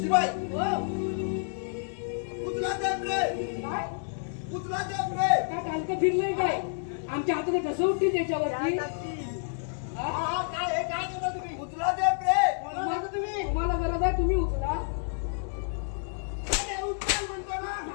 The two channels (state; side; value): silent; right; 58 dB below the other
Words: शिवाय उचला द्या रे, काय उचला द्या रे. काय हलकं फिरलंय काय? आमच्या हाताने कसं उठतील त्याच्यावरती? काय केलं तुम्ही? उचला द्या रे. तुम्हाला गरज आहे तुम्ही उचला. उचल म्हणतो ना.